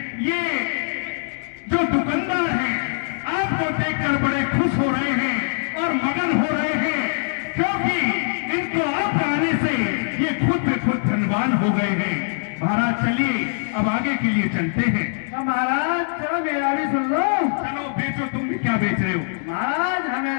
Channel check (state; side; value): silent; right; digital silence